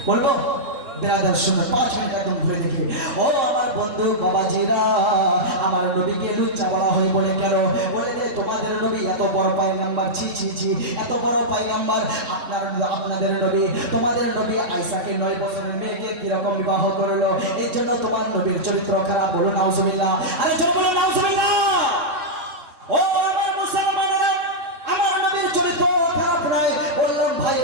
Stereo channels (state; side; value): late; left; 3.7 ms